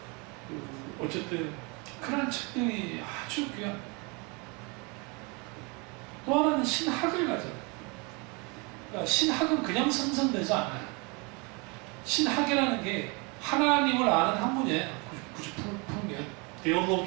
어쨌든 그런 책들이 아주 귀한. 또 하나는 신학을 가져요. 그러니까 신학은 그냥 생성되지 않아요. 신학이라는 게 하나님을 아는 학문이에요. 굳이 풀면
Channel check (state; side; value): quieter; left; 30.1 dB